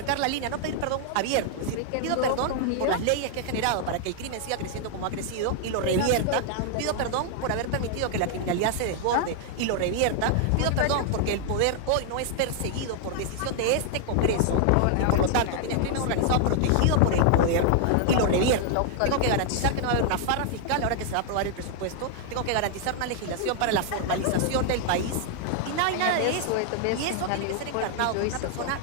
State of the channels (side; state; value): both; different; correlation 0.00